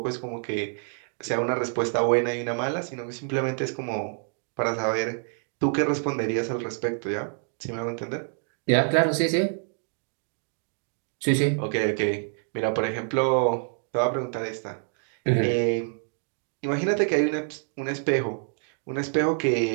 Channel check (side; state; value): left; silent; 55 dB below the other